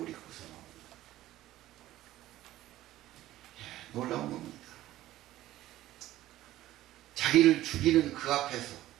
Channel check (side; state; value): left; quieter; 14.9 dB